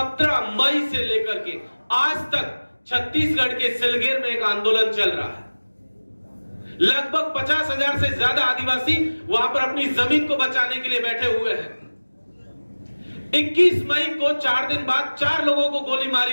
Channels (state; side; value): inverted; both; correlation -1.00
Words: मई से लेकर के आज तक छत्तीसगढ़ के सिलगेर में एक आंदोलन चल रहा है। लगभग 50,000 से ज्यादा आदिवासी वहां पर अपनी जमीन को बचाने के लिए बैठे हुए हैं। 21 मई को 4 दिन बाद 4 लोगों को गोली